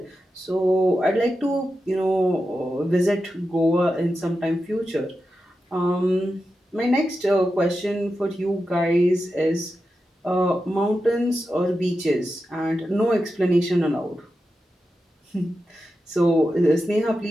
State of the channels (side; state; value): both; normal; correlation 0.90